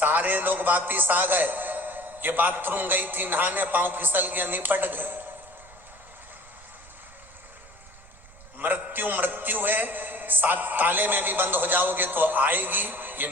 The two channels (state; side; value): noise; right; rumble, 23 dB below the sound